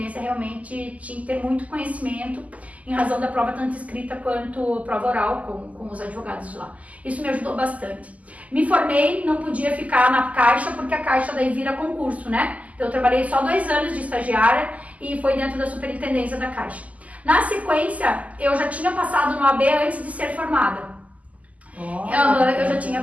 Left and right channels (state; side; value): late; left; 0.073 ms